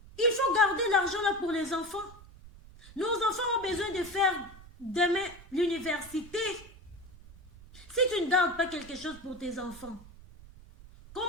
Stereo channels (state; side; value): noise; right; rumble, 20 dB below the sound